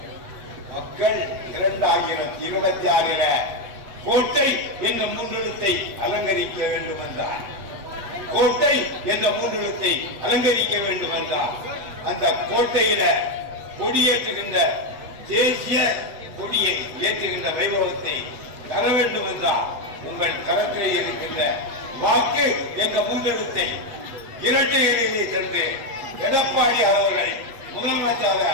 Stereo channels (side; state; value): left; late; 8.1 ms